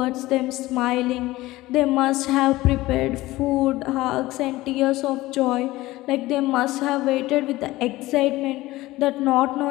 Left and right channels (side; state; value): right; quieter; 18.2 dB